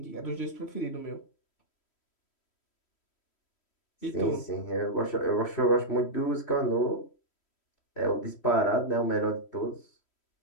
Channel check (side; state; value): right; late; 3.1 ms